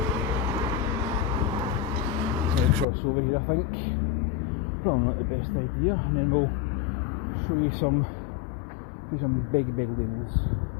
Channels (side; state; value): right; drops out; at 2.9 s